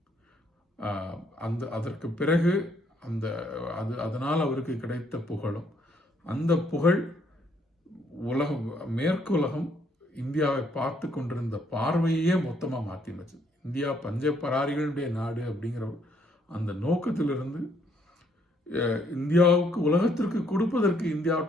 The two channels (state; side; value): normal; both; correlation 0.69